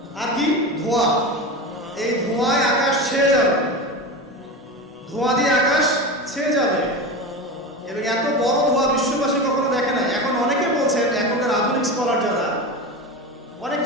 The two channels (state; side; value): normal; both; correlation 0.25